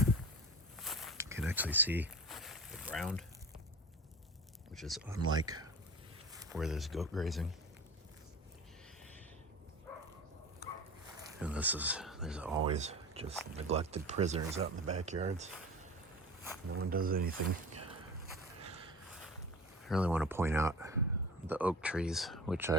can actually see the ground, which is unlike where there's goat grazing. And there's always just neglected prisoners out in the backyards. No one does anything. I really want to point out the oak trees, which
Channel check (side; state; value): both; normal; correlation 0.35